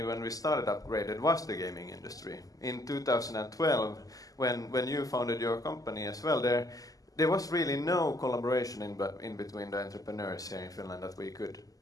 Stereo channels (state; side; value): late; right; 0.17 ms